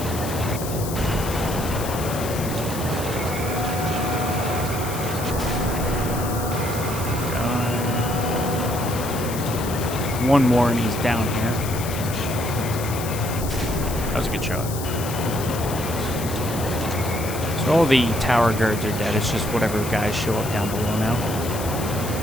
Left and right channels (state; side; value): noise; left; hiss, 10 dB below the sound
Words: One more and he's down here. That was a good shot. So all the tower guards are dead. It's just whatever guys show up down below now.